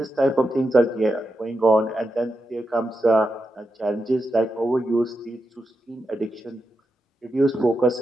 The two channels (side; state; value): both; normal; correlation 0.87